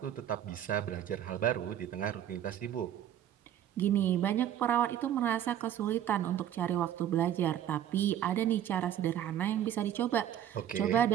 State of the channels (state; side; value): quieter; left; 10.7 dB